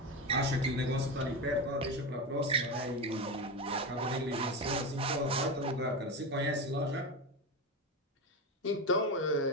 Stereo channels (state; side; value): normal; both; correlation 0.18